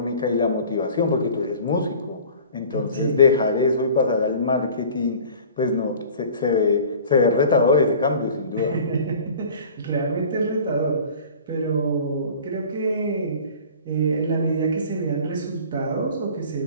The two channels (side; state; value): both; inverted; correlation -0.44